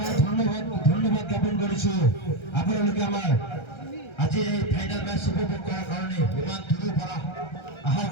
ধন্যবাদ জ্ঞাপন করেছি। আপনাদেরকে আমার আজকের এই ফাইনাল ম্যাচ উপভোগ করার কারণে, বিমান ধুলো পড়া আহার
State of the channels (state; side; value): late; right; 1.3 ms